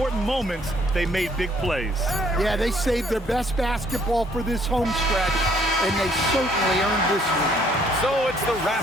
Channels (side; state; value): both; normal; correlation 0.64